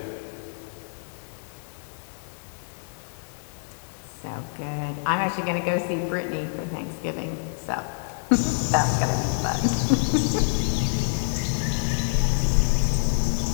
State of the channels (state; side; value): silent; right; digital silence